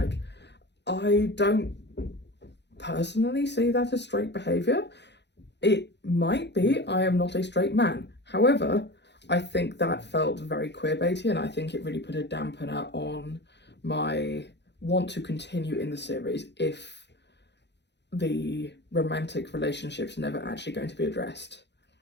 I don't personally see that as straight behaviour. It might be, I am not a straight man. However, I think that felt very queerbaity, and I think it really put a dampener on my want to continue in the series if the romantic relationship's never actually going to be addressed.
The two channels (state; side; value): late; right; 0.50 ms